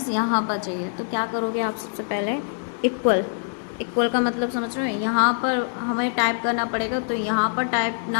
यहाँ पर चाहिए, तो क्या करोगे आप, सबसे पहले इक्वल, इक्वल का मतलब समझ रहे हो, यहाँ पर हमें टाइप करना पड़ेगा, तो यहाँ पर टाइप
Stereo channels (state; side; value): silent; right; 63 dB below the other